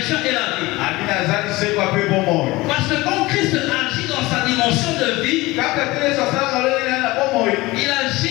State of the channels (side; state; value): right; quieter; 20.7 dB